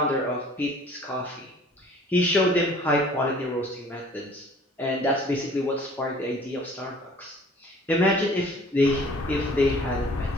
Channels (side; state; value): both; normal; correlation 0.52